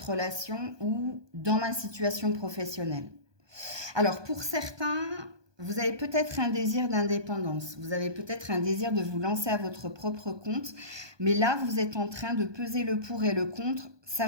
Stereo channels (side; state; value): left; late; 1.2 ms